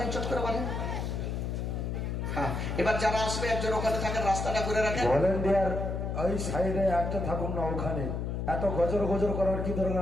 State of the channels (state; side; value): noise; left; hum, 2 dB below the sound